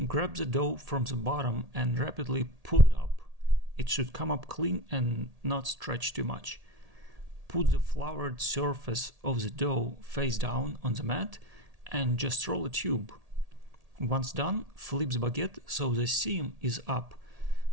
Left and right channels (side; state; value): left; late; 1.8 ms